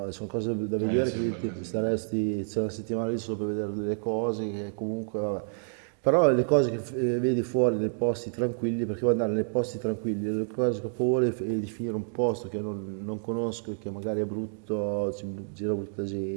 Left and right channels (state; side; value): silent; left; digital silence